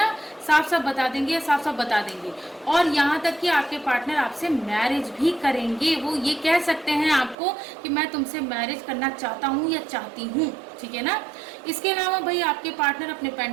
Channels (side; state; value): left; drops out; at 7.4 s